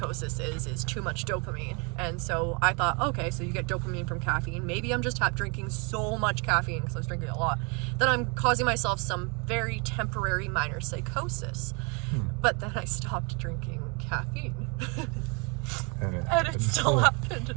is too much dopamine. And so I thought, okay, so you get dopamine from caffeine. Maybe I'm just drinking so much caffeine because I was drinking a lot that I'm causing myself some very temporary minor psychosis. But then I stopped drinking caffeine. and it still happened.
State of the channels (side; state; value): left; quieter; 32.6 dB